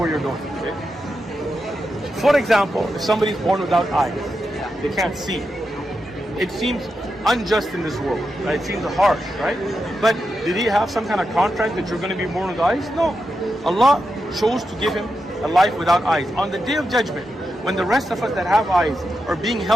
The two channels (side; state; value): both; normal; correlation 0.87